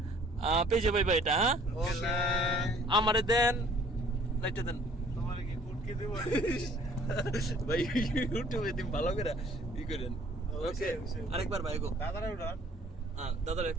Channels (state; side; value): normal; both; correlation 0.56